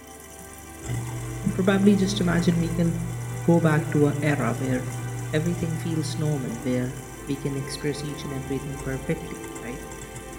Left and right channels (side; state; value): both; identical; correlation 1.00